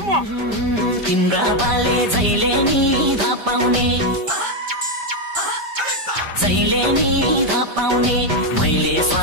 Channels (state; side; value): late; left; 5.1 ms